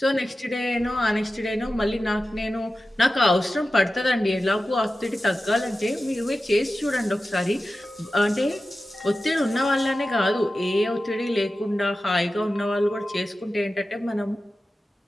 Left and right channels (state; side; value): normal; both; correlation 0.94